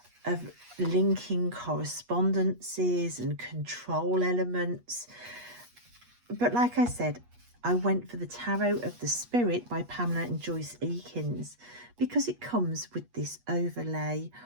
linking correspondences and control elements. But like I said, I went for the Tarot of the Spirit by Pamela and Joyce Eakins because it comes with this overlay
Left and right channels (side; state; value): left; late; 8.3 ms